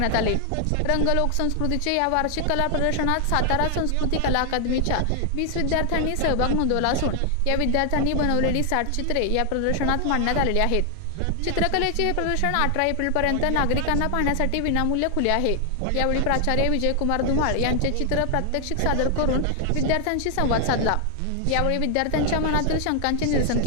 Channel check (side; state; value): both; different; correlation 0.00